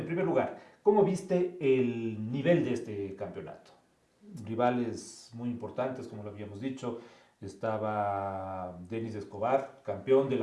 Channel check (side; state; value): both; identical; correlation 1.00